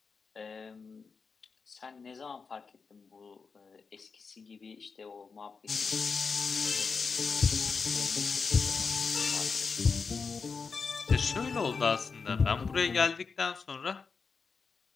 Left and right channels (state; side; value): quieter; right; 5.1 dB